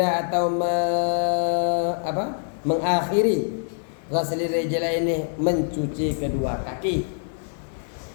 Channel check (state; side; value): silent; right; digital silence